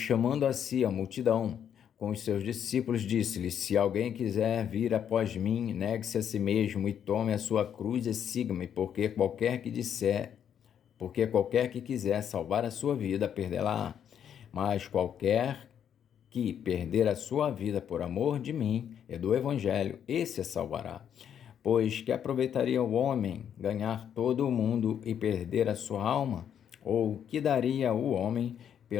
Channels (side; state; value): right; quieter; 8.9 dB